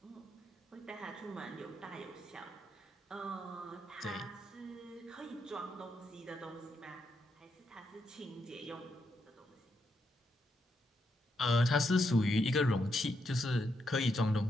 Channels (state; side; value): normal; both; correlation 0.81